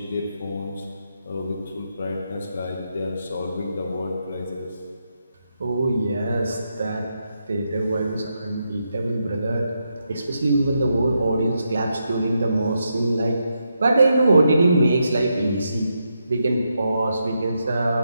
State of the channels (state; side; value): inverted; both; correlation -0.83